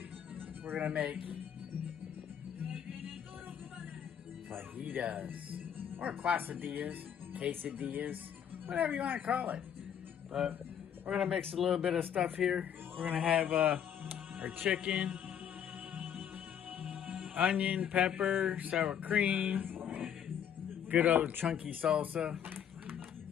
we're gonna make fajitas, or quesadillas, quesadillas, whatever you want to call it. But we're gonna mix a little bit of stuff here. We're gonna have our chicken, onion, pepper, sour cream, good old chunky salsa,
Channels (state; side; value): quieter; right; 8.9 dB